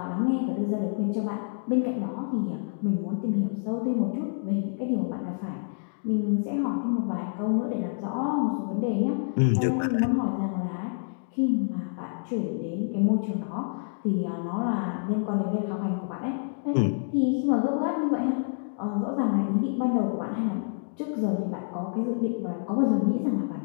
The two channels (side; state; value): right; silent; digital silence